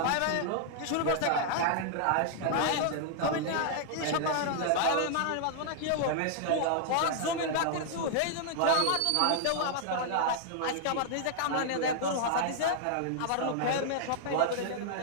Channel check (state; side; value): different; both; correlation -0.01